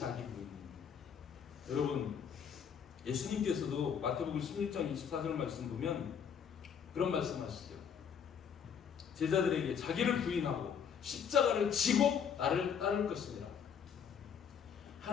부인입니다. 여러분, 예수님께서도 마태복음 16장 24절 말씀 보면 그런 말씀하시죠. 제자들에게 자기를 부인하고 십자가를 지고 나를 따를 것이니라.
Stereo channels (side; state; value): right; quieter; 7.4 dB